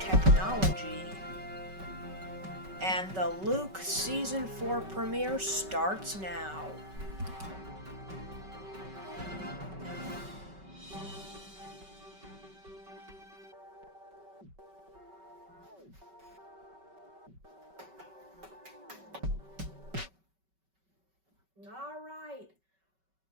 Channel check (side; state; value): left; late; 5.3 ms